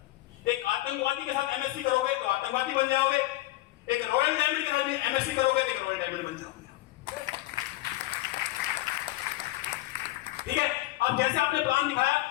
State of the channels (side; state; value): right; quieter; 17.9 dB